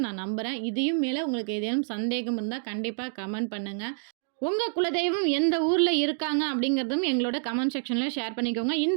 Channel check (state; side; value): silent; left; digital silence